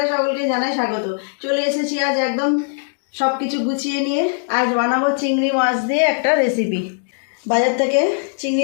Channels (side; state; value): right; silent; 65 dB below the other